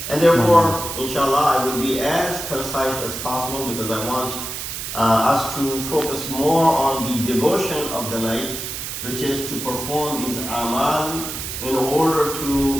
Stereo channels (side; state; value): right; noise; hiss, 6 dB below the sound